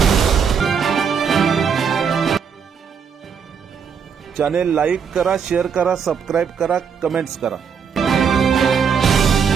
चॅनेल लाईक करा, शेअर करा, सबस्क्राईब करा, कमेंट्स करा।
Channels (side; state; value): left; quieter; 6.7 dB